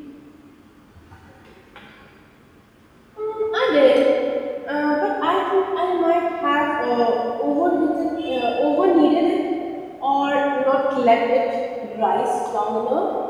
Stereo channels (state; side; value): identical; both; correlation 1.00